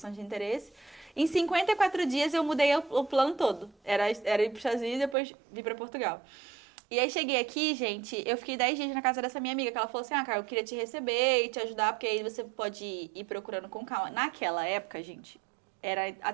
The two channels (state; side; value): drops out; left; at 5.2 s